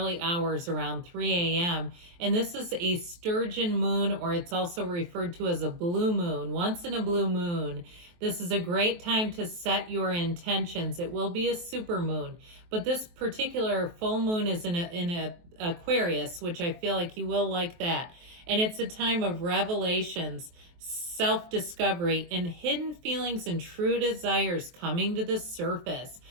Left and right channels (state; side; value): late; left; 23 ms